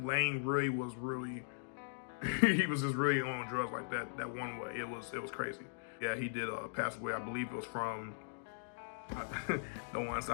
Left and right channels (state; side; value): silent; right; digital silence